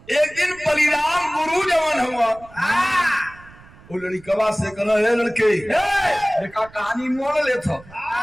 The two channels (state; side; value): noise; right; rumble, 23 dB below the sound